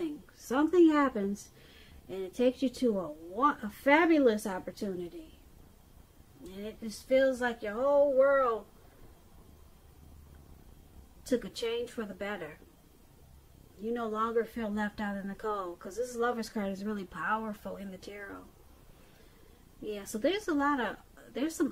Something happens, and it takes you to a fabulous opportunity. And it just feels like your whole world took a change for the better. You no longer feel left out in the cold, because this Lover's card is really powerful in the tarot. Yeah, so there's some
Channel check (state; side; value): identical; both; correlation 1.00